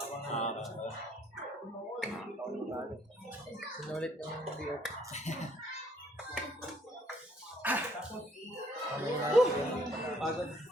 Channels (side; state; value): both; normal; correlation 0.64